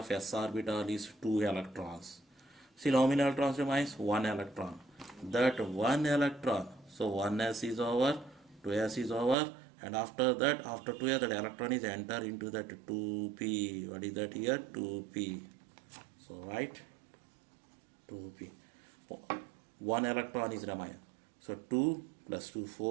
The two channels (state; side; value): drops out; left; at 9.3 s